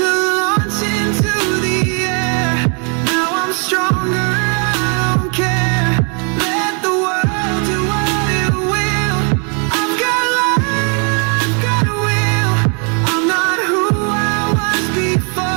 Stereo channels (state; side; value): quieter; left; 38.0 dB